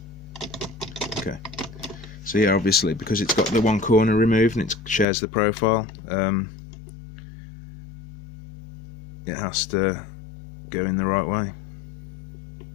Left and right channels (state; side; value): drops out; right; at 5.1 s